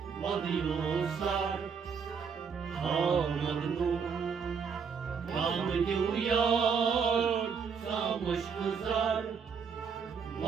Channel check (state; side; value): quieter; left; 6.2 dB